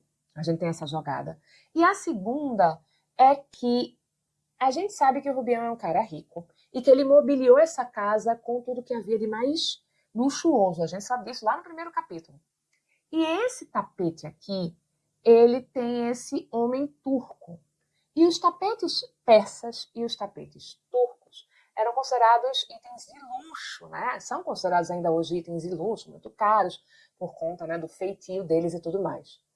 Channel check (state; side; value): identical; both; correlation 1.00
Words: A gente tem essa jogada. E a segunda é que a gente sabe que o Rubião é um cara rico e que ele mobiliou essa casa com tudo que havia de mais luxuoso. A gente sabe disso lá no primeiro capítulo. E esse tapete aqui, ele tem esse homem turco. E os tapetes persas e os tapetes turcos eram considerados itens de luxo, né? São considerados ainda hoje itens de luxo, muito caros, por conta, né, do feitio deles e tudo mais.